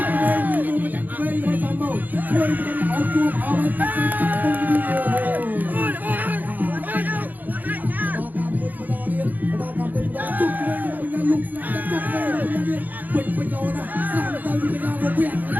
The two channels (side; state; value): left; late; 0.084 ms